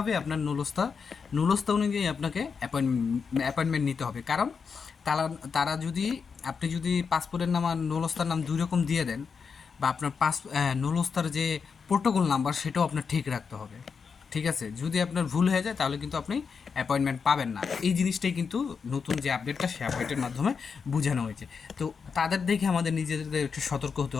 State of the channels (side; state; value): right; quieter; 5.8 dB